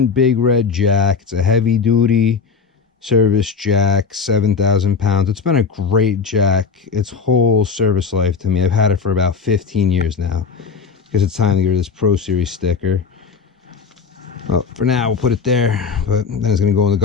Big Red jack. It's a heavy duty service jack, 7,000 pounds. It's been a great jack its whole service life to me. I've had it for about 15 years now because it's time to get rid of this Pro Series sticker. Well, for now, we'll put it there, but then it's going to go in the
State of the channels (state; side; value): quieter; right; 5.5 dB